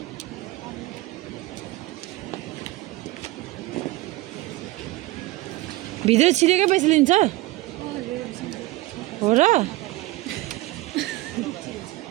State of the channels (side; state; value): left; quieter; 18.7 dB